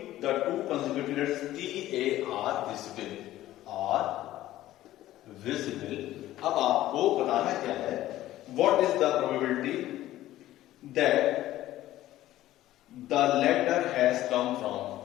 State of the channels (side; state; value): right; quieter; 14.6 dB